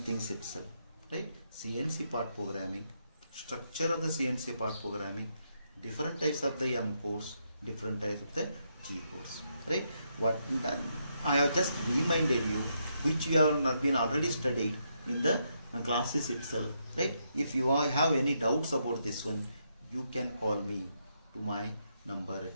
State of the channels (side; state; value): both; inverted; correlation -0.79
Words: things itself, right? CNC part programming, structure of the CNC part programming, different types of the M codes, different types of the G codes, right? What I have just reminded you, which you have been already studied in the classes itself, right? If you have any doubts about this one, you can call me to my number